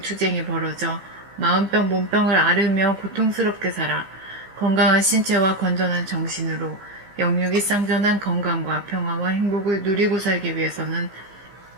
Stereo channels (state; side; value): late; left; 15 ms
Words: 투쟁이 벌어져 마음병 몸병을 앓으며 고통스럽게 살아 건강한 신체와 건전한 정신으로 영육이 쌍전한 건강과 평화와 행복을 누리고 살기 위해서는